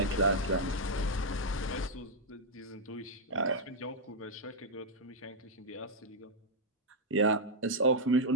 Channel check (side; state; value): both; normal; correlation -0.04